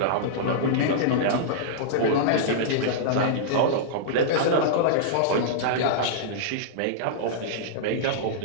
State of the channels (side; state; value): both; different; correlation -0.03